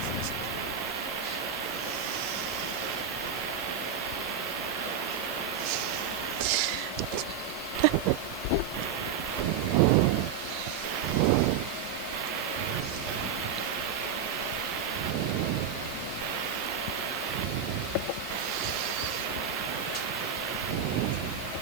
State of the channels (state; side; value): quieter; left; 6.8 dB